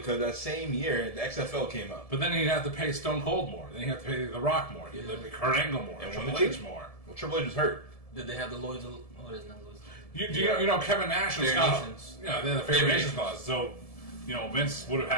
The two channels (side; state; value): right; late; 1.7 ms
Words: that same year the XFL came out. But then he'd have to pay Stone Cold more. Then he'd have to pay The Rock more. He'd have to pay Kurt Angle more. And Triple one of H the more. Well, Triple H was hurt. Did they have the Lloyd's? Oh, it isn't Lloyd's. You know Kevin Nash and Fair Scott. Nations. Yeah, they had the Fair Nations clause. So, Vince would have